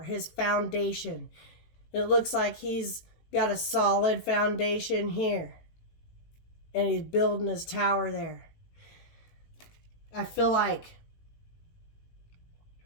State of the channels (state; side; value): late; right; 18 ms